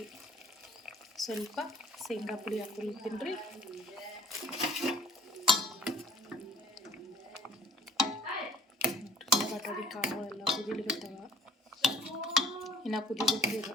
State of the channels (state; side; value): normal; both; correlation 0.53